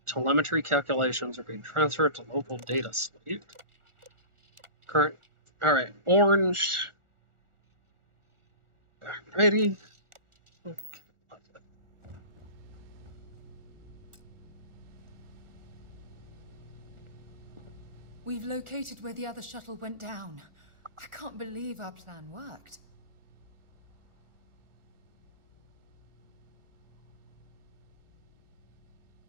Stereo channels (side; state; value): left; late; 1.4 ms